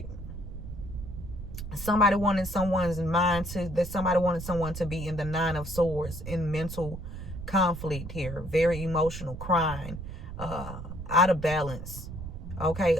Somebody wanted someone's mind to, that somebody wanted someone to be in the 9 of Swords, in mental conflict here, very emotional, crying, out of balance. Okay,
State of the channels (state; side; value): noise; right; rumble, 9 dB below the sound